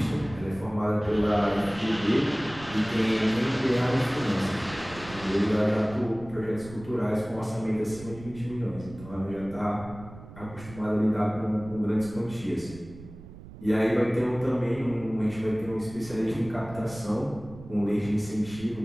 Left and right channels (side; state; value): right; noise; rumble, 16 dB below the sound